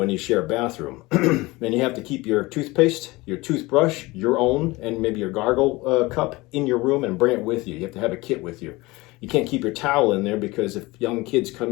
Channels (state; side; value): quieter; right; 21.8 dB